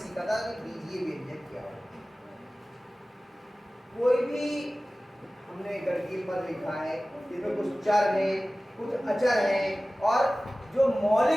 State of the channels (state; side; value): normal; both; correlation 0.97